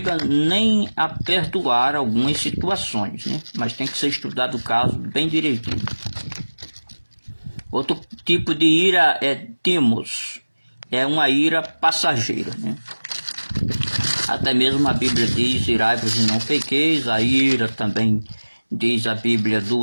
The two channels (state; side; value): inverted; both; correlation -1.00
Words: nem a perdoar algumas situações, né? Mas tem que ser estudado o caso bem direitinho. Outro tipo de ira é timos, é uma ira passageira, né? Até mesmo a Bíblia diz, irai-vos e não pequeis. A ira também diz a Bíblia,